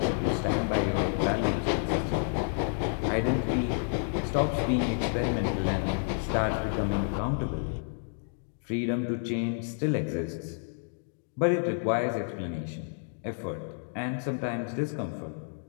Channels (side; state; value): right; silent; digital silence